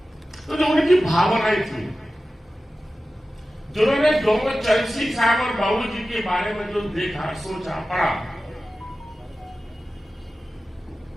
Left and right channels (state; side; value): normal; both; correlation 0.95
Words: तो जो उनकी भावनाएं थी, जिन्होंने दोनों चरण सिंह साहब और बाबू जी के बारे में जो देखा, सोचा, पढ़ा,